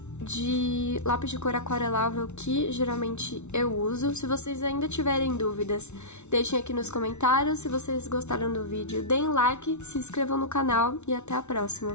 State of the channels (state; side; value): late; right; 0.82 ms